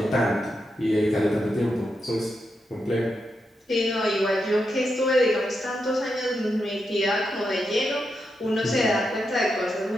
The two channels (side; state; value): both; normal; correlation 0.85